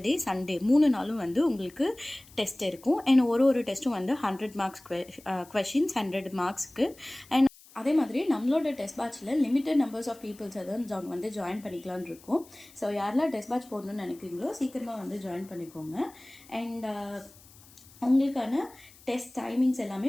சண்டே 3 நாளும் வந்து உங்களுக்கு டெஸ்ட் இருக்கும். அண்ட் ஒரு டெஸ்ட்டும் வந்து 100 marks கொஷின்ஸ் 100 marksக்கு. அண்ட் அதே மாதிரி நம்மளோட டெஸ்ட் பேட்சில் லிமிட்டட் நம்பர்ஸ் ஆஃப் பீப்புள்ஸ் வந்து ஜாயின் பண்ணிக்கலான்னு இருக்கும். ஸோ யாரெல்லாம் டெஸ்ட் பேட்ச் போடணும்னு நினைக்கிறீங்களோ சீக்கிரமாக வந்து ஜாயின் பண்ணிக்கோங்க. அண்ட் உங்களுக்கான டெஸ்ட் டைமிங்ஸ் எல்லாமே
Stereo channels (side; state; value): left; noise; hiss, 24 dB below the sound